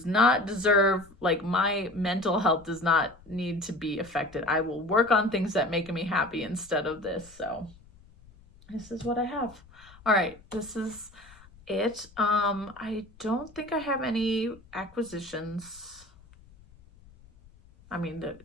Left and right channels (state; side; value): noise; left; rumble, 25 dB below the sound